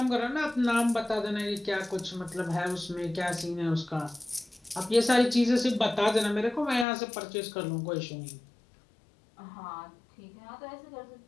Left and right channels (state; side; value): drops out; right; at 6.9 s